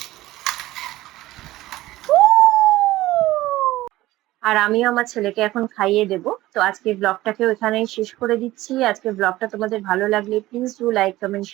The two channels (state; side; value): quieter; left; 16.9 dB